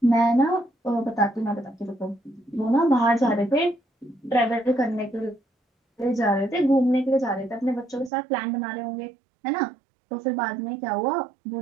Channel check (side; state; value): left; drops out; at 8.1 s